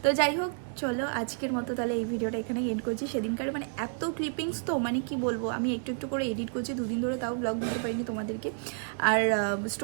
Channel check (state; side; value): silent; left; 58 dB below the other